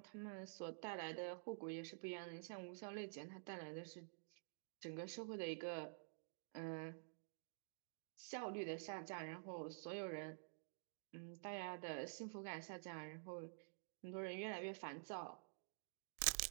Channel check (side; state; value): left; silent; digital silence